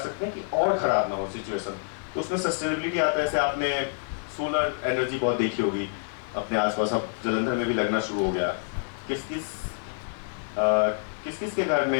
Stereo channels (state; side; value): silent; right; 56 dB below the other